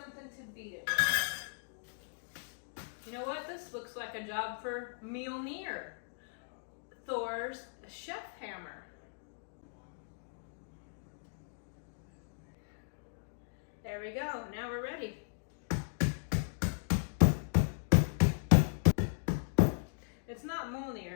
like a job for Mjolnir, Thor's chef hammer. There we go, now we're ready. It's not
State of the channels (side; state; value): right; silent; digital silence